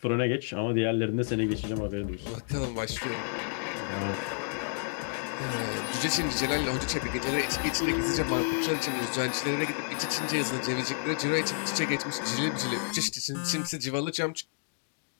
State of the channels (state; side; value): silent; right; digital silence